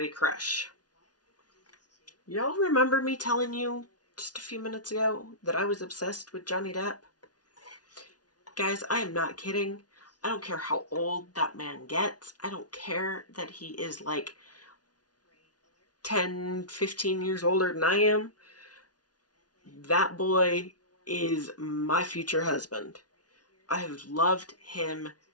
crush? Y'all remember me telling you just a few minutes ago that I was obsessed with Johnny Depp? Guys, I am not kidding. I don't care how old that man gets. I don't care that he is like 10, 15 years older than I am. That boy is my future husband. I have loved him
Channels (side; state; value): right; late; 0.69 ms